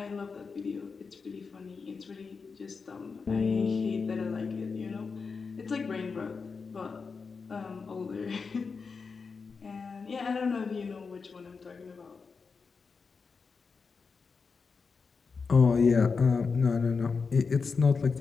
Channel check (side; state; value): right; quieter; 5.0 dB